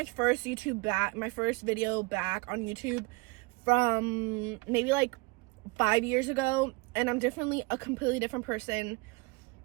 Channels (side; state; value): left; quieter; 26.4 dB